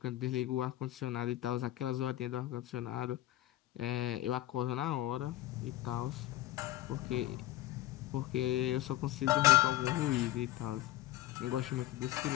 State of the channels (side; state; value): right; quieter; 15.1 dB